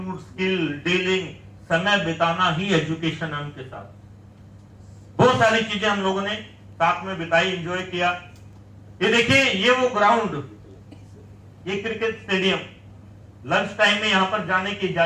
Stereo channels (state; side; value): identical; both; correlation 1.00